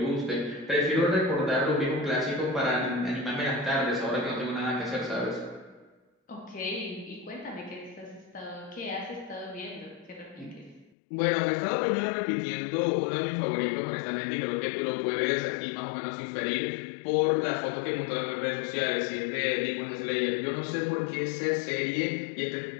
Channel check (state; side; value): drops out; right; at 10.9 s